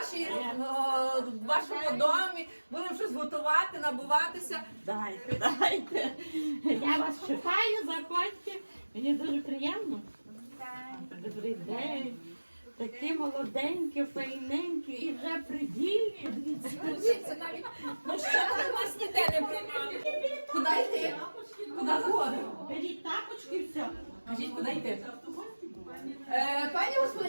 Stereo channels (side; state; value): both; inverted; correlation -1.00